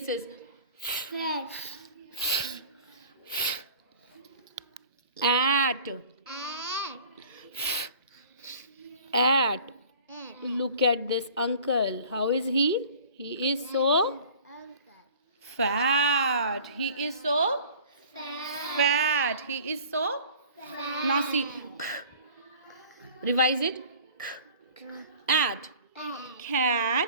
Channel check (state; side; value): inverted; both; correlation -0.47